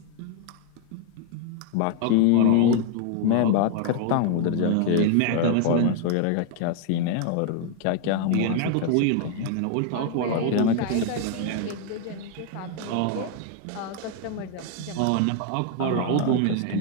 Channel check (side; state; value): both; different; correlation 0.01